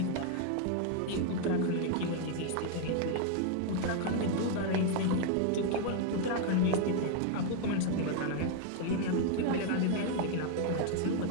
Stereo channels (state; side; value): different; both; correlation 0.00